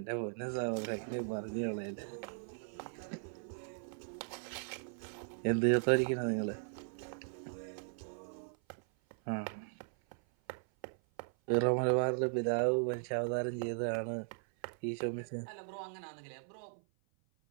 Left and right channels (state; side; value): silent; left; 52 dB below the other